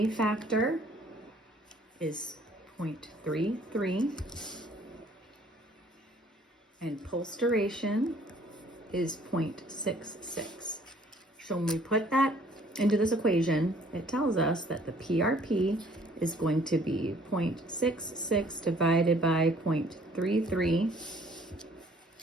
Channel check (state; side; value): normal; both; correlation 0.58